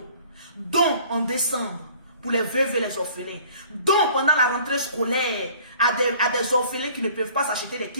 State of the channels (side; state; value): both; inverted; correlation -0.52